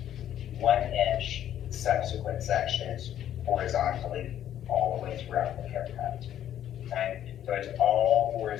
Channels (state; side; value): quieter; right; 11.0 dB